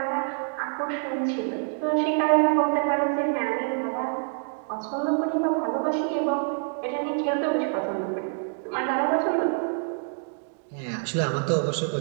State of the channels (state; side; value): silent; left; 61 dB below the other